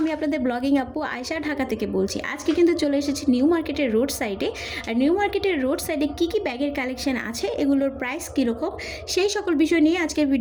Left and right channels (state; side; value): identical; both; correlation 1.00